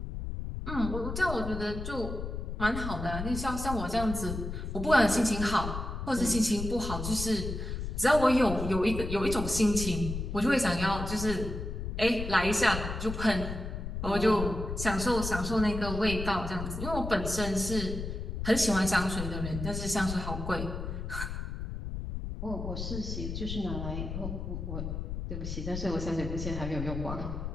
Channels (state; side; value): noise; left; rumble, 5 dB below the sound